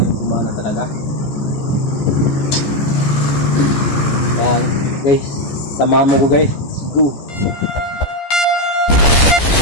gumana talaga. Kaya guys, samahan mo ko guys. Let's go.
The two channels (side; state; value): right; late; 14 ms